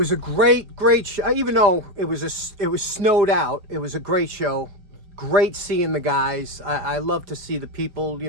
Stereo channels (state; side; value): late; left; 4.9 ms